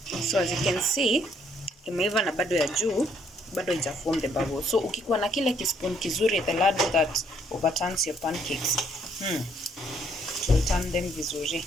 So as you can see, imeiva na bado ya juu bado ija form the bubble. So ukikuwa na kile kispoon kizuri, the ladle that overturns your pancakes, to turn them vizuri.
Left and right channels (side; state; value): both; normal; correlation 0.68